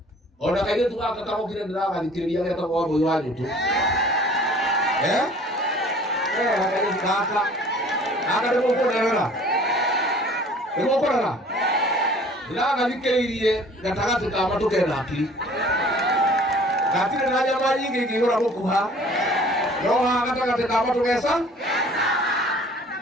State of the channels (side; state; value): both; normal; correlation 0.50